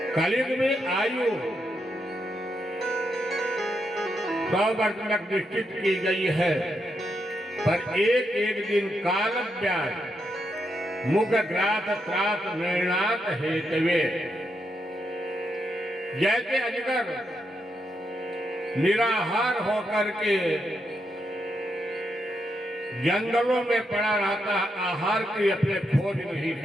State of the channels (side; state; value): both; normal; correlation 0.82